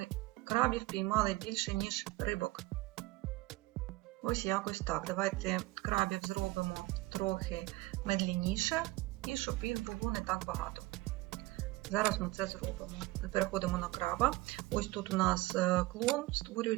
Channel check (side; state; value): left; quieter; 20.1 dB